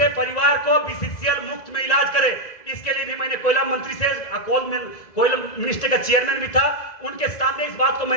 परिवार को बीसीसीएल मुफ्त में इलाज करे। इसके लिए भी मैंने कोयला मंत्री से, कोयला मिनिस्टर का चेयरमैन भी था, उनके सामने इस बात को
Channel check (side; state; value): right; late; 2.0 ms